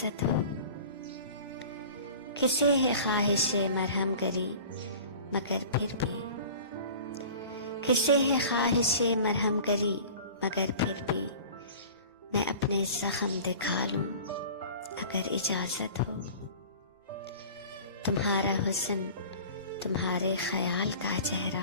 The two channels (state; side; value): inverted; both; correlation -0.41